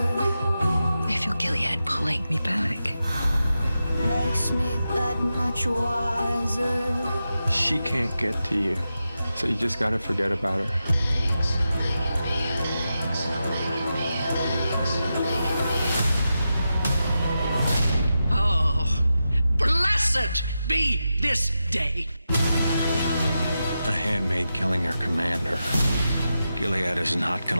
I feel Gilead pulling me back. Makes me that much wiser. She can't get to you, so you just gotta forget about her. Oh, blessed be this day. A handmaid killing her commander. Gilead is not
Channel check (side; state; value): both; inverted; correlation -0.90